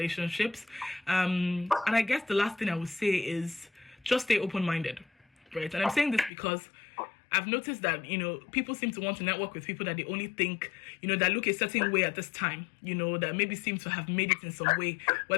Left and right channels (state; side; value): drops out; right; at 6.3 s